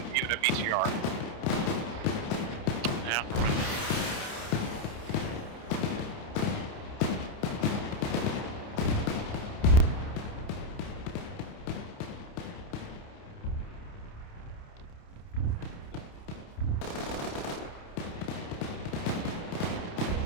a BTR. Yeah,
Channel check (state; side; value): late; right; 29 ms